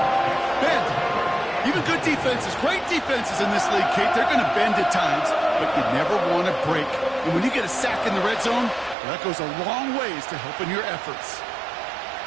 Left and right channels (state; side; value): drops out; left; at 9.0 s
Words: Even good defenses, great defenses in this league, Kate, they're going to bend at times, but you never want to break. And when you get a sack in the red zone, well, that goes a long ways to helping your efforts.